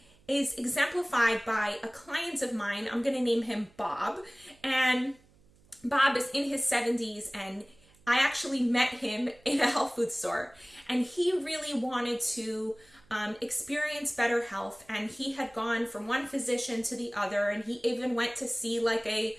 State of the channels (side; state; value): right; noise; hum, 30 dB below the sound